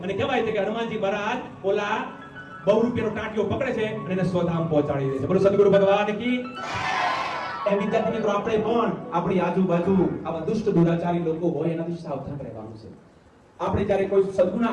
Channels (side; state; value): both; identical; correlation 1.00